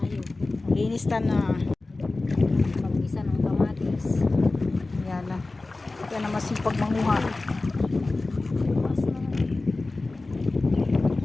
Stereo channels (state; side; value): quieter; right; 3.3 dB